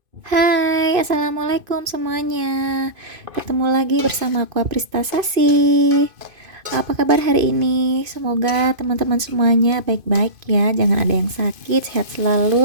Hai, assalamualaikum semuanya. Ketemu lagi bersama aku Aprista Sasi. Apa kabar hari ini? Semoga teman-teman semuanya baik-baik ya. Jangan ada yang sakit, sehat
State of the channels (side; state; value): left; late; 2.5 ms